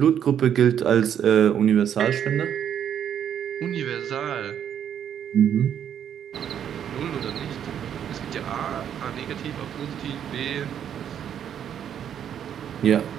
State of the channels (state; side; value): quieter; left; 9.2 dB